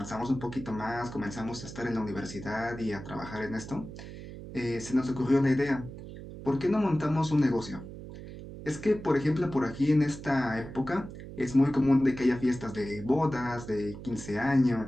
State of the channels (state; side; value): noise; right; hum, 12 dB below the sound